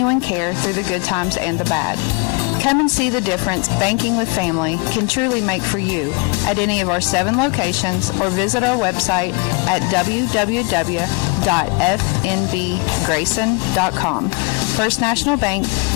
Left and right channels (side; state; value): right; quieter; 30.3 dB